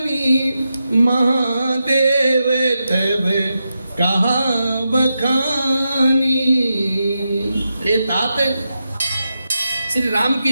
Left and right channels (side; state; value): both; inverted; correlation -0.88